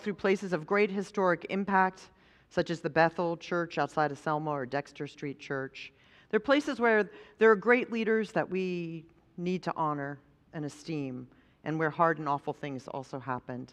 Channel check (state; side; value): identical; both; correlation 1.00